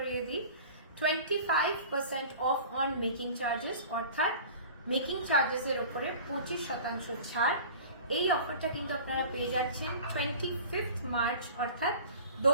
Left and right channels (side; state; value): both; inverted; correlation -0.40